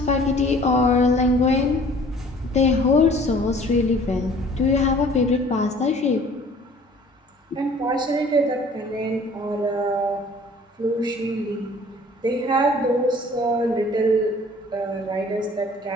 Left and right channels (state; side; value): normal; both; correlation 0.51